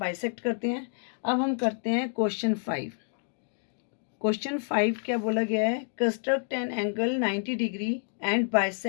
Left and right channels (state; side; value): silent; right; 59 dB below the other